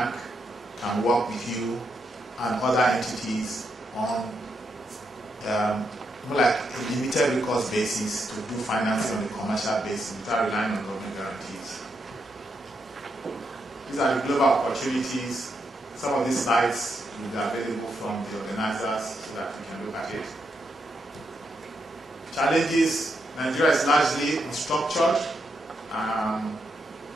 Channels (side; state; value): both; normal; correlation 0.81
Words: can work with you and other entities on more like a limited recourse basis to do financing on a commercial basis without relying on government guarantees. These are the global opportunities. Some of these slides will be available from the organizers so that we can look at it. Challenges: Nigeria is largely unstructured. A